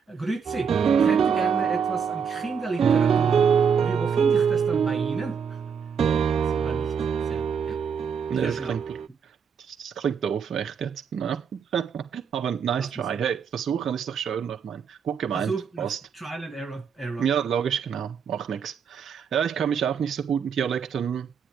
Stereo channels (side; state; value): left; quieter; 6.7 dB